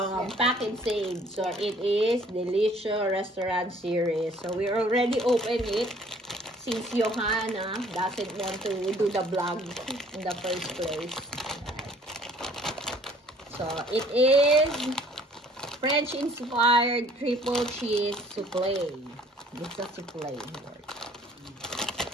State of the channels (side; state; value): both; normal; correlation 0.56